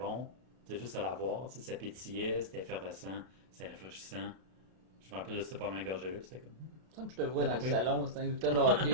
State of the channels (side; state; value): left; late; 32 ms